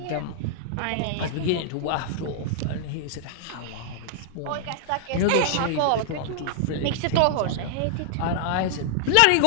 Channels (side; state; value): both; different; correlation -0.01